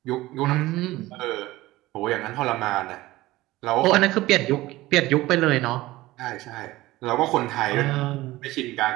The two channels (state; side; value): quieter; left; 18.0 dB